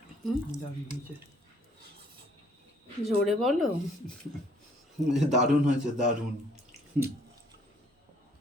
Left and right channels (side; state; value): both; normal; correlation 0.62